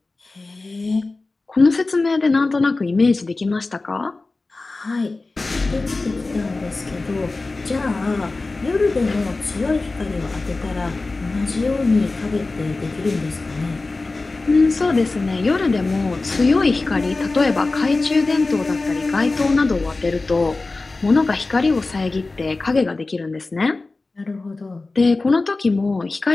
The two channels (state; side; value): quieter; right; 3.4 dB